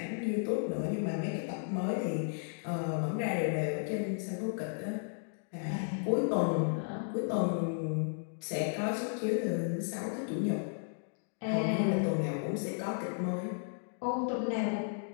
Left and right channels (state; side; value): silent; right; digital silence